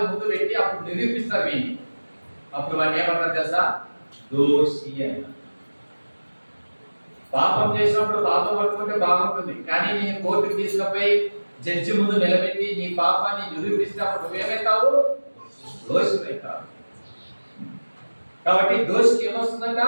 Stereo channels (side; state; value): both; inverted; correlation -1.00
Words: ముందు పెట్టి అప్పుడు నిరూపిస్తారు వీడిని. అప్పుడు వాడిని ఏమంటారు తెలుసా? దోషి అంటారు. పాపం చేసినప్పుడు పాపం పట్టుకుంటే బాగుంటుంది, కానీ నేను కోర్టుకు తీసుకుపోయి జడ్జి ముందు నిలబెట్టి నీ పాపాన్ని నిరూపిస్తే అప్పుడు నువ్వేమవుతావు? దోషివైతావు. కాబట్టి దోషికి ఏమొస్తుందంట?